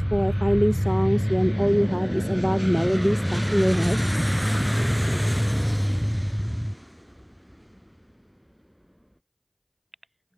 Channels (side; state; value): both; identical; correlation 1.00